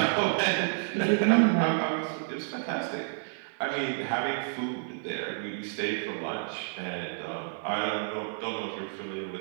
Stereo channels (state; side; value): silent; left; 56 dB below the other